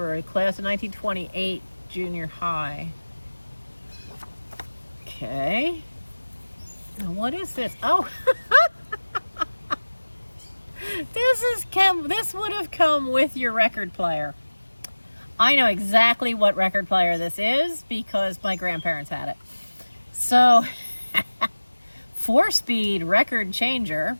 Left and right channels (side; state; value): both; inverted; correlation -1.00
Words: a class of 1928 junior high. Okay. Now what is this? Oh, this would have come with your record player. I know exactly what record player this is because my grandparents had it. So, 4-speed record changer.